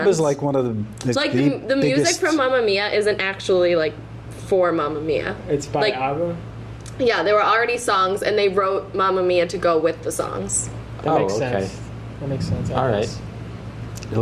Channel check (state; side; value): identical; both; correlation 1.00